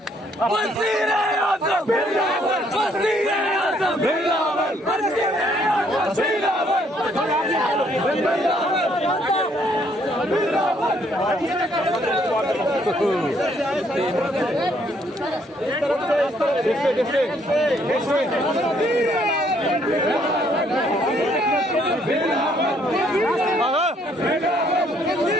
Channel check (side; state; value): both; normal; correlation 0.67